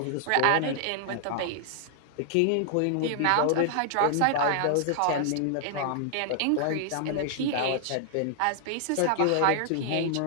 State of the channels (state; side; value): different; both; correlation 0.00